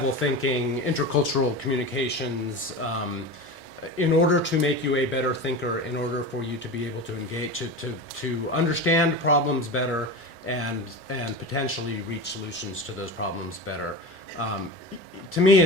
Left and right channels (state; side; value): normal; both; correlation 0.27